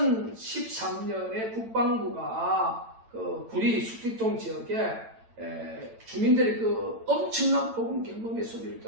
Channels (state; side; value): late; left; 8.9 ms